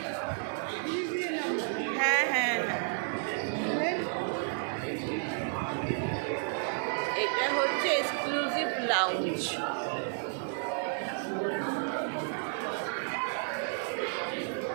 হ্যাঁ হ্যাঁ হ্যাঁ, এটা হচ্ছে এক্সক্লুসিভ লাউঞ্জ।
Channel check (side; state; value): left; silent; 57 dB below the other